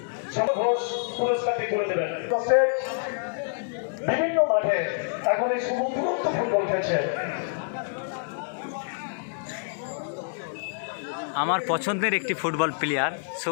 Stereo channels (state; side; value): silent; right; 60 dB below the other